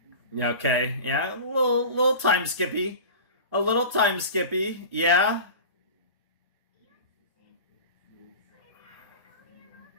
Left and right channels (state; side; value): inverted; both; correlation -0.35